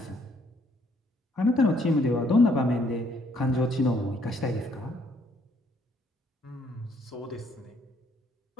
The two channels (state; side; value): normal; both; correlation 0.67